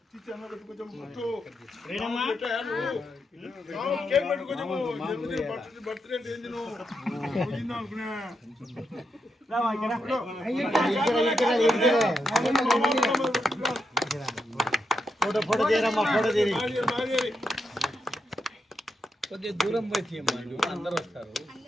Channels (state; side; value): normal; both; correlation 0.83